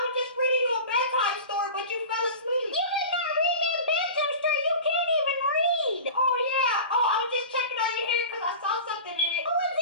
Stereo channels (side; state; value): both; inverted; correlation -0.34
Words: was just reading you a bedtime story, but you fell asleep. You did not read me a bedtime story. You can't even read. Oh, yeah. Oh, I was just checking out your hair because I saw something in it. What was